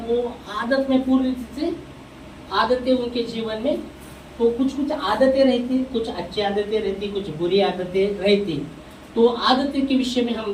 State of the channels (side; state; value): both; identical; correlation 1.00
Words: वो आदत में पूरी रीति से आदतें उनके जीवन में, तो कुछ आदतें रहती, कुछ अच्छी आदतें रहती, कुछ बुरी आदतें रहती। तो आदतें के विषय में